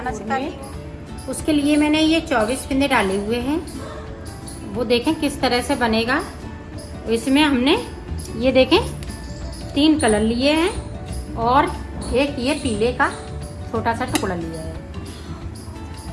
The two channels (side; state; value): both; identical; correlation 1.00